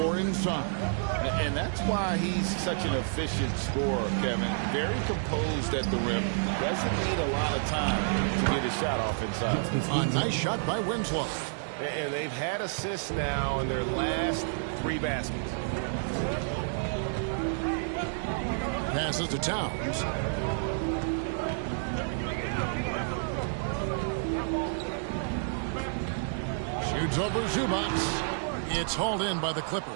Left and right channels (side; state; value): left; silent; digital silence